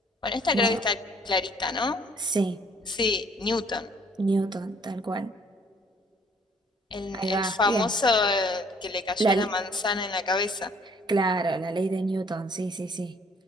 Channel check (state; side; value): normal; both; correlation 0.60